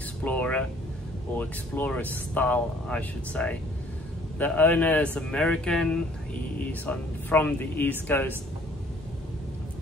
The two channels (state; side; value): normal; both; correlation 0.58